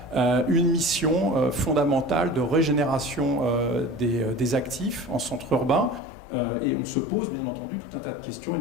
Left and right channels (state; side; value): drops out; right; at 6.0 s